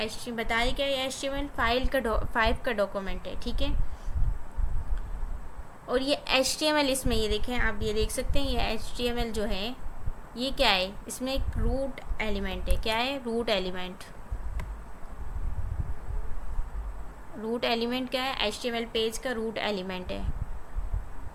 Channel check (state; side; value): identical; both; correlation 1.00